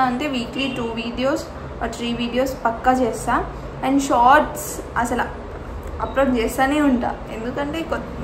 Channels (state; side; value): identical; both; correlation 1.00